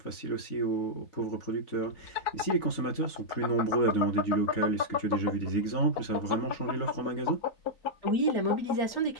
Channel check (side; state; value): right; late; 3.9 ms